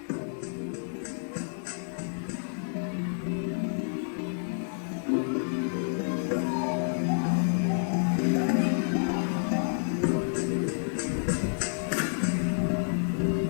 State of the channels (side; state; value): right; silent; digital silence